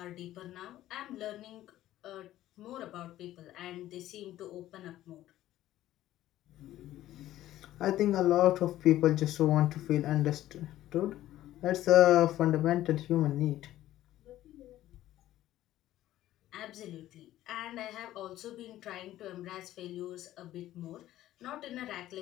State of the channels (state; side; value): quieter; right; 14.0 dB